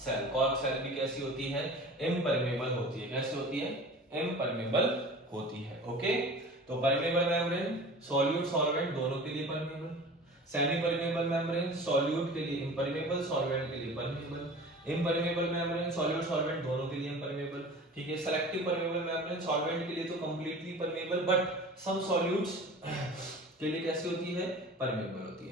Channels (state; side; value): normal; both; correlation 0.39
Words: सेल भी कैसी होती है, इम्परमेबल होती है। कैसी होती है, इम्परमेबल होती है। ओके, तो परमेबल मेम्ब्रेन सॉल्यूट सॉल्वेंट दोनों के लिए permeable, semi permeable membrane solute के लिए इम्परमेबल, सॉल्वेंट के लिए permeable, impermeable membrane solute solvent दोनों के लिए इम्परमेबल। ठीक है, सेलेक्टिव परमेबल मेम्ब्रेन सॉल्वेंट के लिए तो completely permeable, but some solutes के लिए कैसी होती है, परमेबल होती